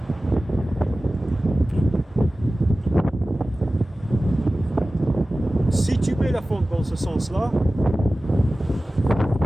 Si tu mets la fonte dans ce sens-là,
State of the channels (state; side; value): normal; both; correlation 0.96